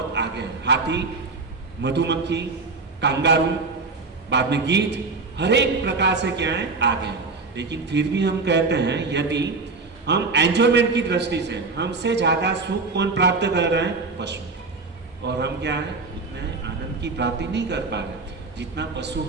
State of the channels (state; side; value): quieter; left; 4.0 dB